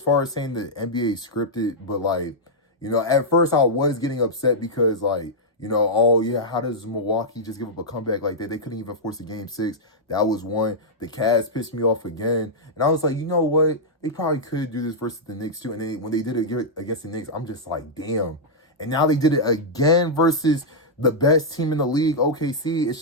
far as saying the NBA is scripted, but like, you know, at first I was getting upset because like, you know, oh yeah, how does Milwaukee just give up a comeback like that? They couldn't even force a game 6. That was one. The Cavs pissed me off again. And I was like, you know what? They probably could do this versus the Knicks too. And then when they did it against the Knicks, I'm just like, damn. And now they did it again versus the best team in the league, OKC. It's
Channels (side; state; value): both; normal; correlation -0.07